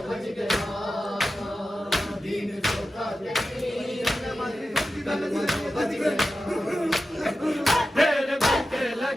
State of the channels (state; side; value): normal; both; correlation 0.92